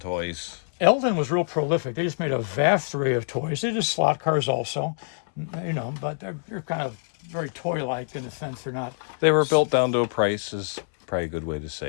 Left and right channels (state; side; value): silent; right; digital silence